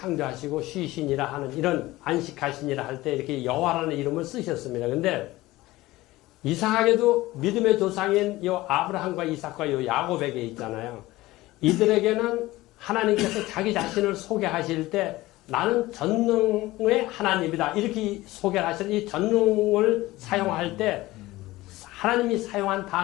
쉬시니라 하는 이런 안식하시니라 할 때 이렇게 여호와라는 이름을 쓰셨습니다. 근데 이상하게도 믿음의 조상인 요 아브라함과 이삭과 요 야곱에게 있잖아요. 이들에게는 하나님께서 자기 자신을 소개하실 때 나는 전능의 하나님이다. 이렇게 소개를 하시는 이 전능을 사용할 때 하나님이 사용한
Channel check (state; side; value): quieter; right; 18.3 dB